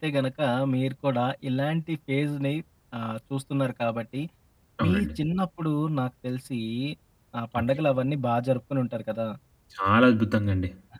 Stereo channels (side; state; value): both; identical; correlation 1.00